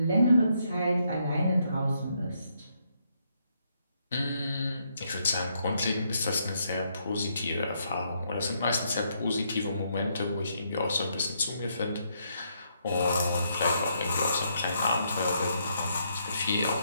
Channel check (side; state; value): both; inverted; correlation -0.75